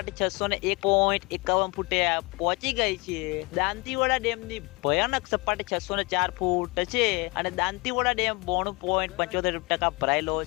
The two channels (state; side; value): quieter; right; 25.9 dB